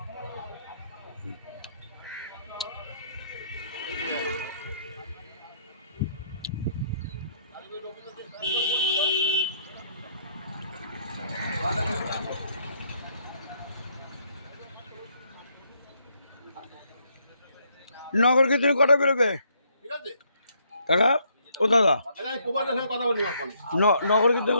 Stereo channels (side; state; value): both; inverted; correlation -0.70